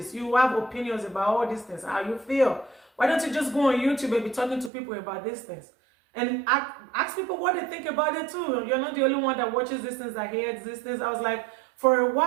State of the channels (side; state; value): left; drops out; at 4.7 s